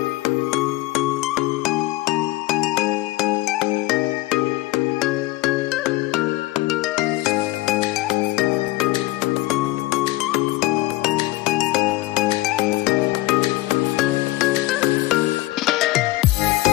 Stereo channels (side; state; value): right; quieter; 18.8 dB